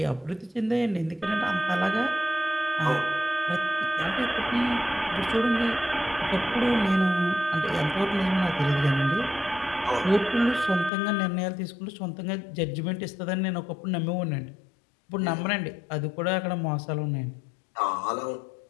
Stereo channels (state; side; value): drops out; right; at 10.9 s